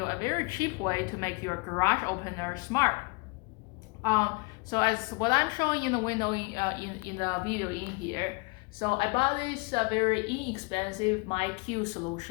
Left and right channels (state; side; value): quieter; right; 28.8 dB